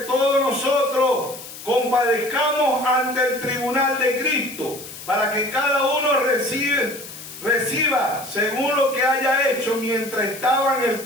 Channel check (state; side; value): noise; left; hiss, 14 dB below the sound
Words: todos nosotros compadezcamos ante el tribunal de Cristo, para que cada uno reciba según lo que haya hecho mientras estaba en el